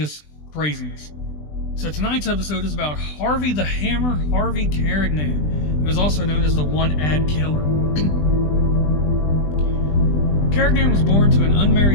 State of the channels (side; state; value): right; late; 20 ms